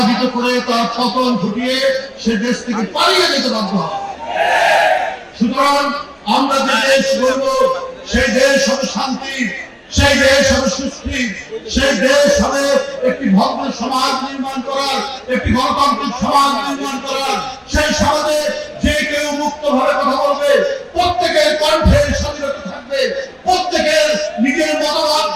করে তার পতন ঘটিয়ে সে দেশ থেকে পালিয়ে যেতে বাধ্য হয়। সুতরাং আমরা যে দেশ গড়ব, সেই দেশ হবে শান্তি, সেই দেশ হবে সুস্থি, সেই দেশ হবে একটি ভদ্র সমাজ নির্মাণ করার, একটি গণতান্ত্রিক সমাজ নির্মাণ করার। সেই সমাজে যে কেউ মুক্তভাবে কথা বলবে, প্রত্যেকের কণ্ঠের স্বাধীনতা থাকবে, প্রত্যেকের নিজের মতামত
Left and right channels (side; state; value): both; identical; correlation 1.00